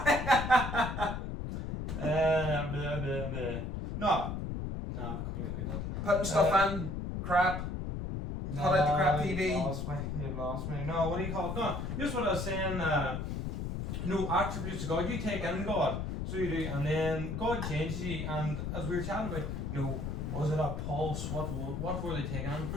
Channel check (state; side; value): noise; left; rumble, 4 dB below the sound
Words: Blah, blah, blah. No, completely not. Putting stuff in, crap. Cut out the crap TV. You've lost me. No, what do you call it? No, just what I was saying. No attributes of God. You take in God. So you do, and then God changes you, and as we were chatting about, you know, was it a pulse? What were they taking on?